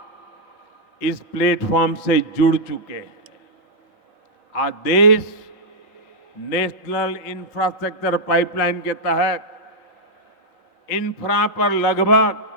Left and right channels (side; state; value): both; normal; correlation -0.06